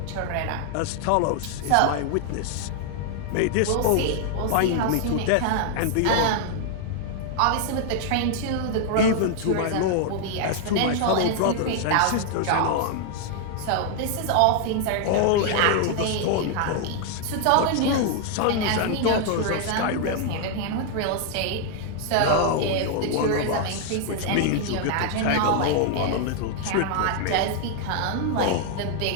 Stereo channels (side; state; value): both; different; correlation 0.00